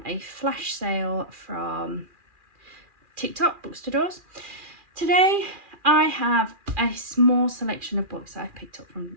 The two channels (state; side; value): late; left; 2.4 ms